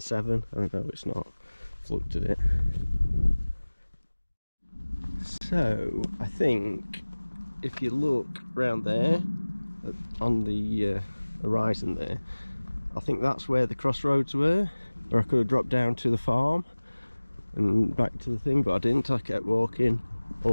7. I don't know, it's not, I've looked at it. So I think if you look round there on the horizon there, I think that's where the crossroads were, or I could have dropped down to the farm and back to the thing, but I didn't. I kept walking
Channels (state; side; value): inverted; both; correlation -1.00